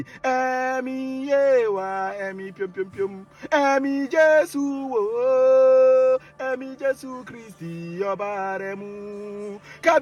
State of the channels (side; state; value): both; identical; correlation 1.00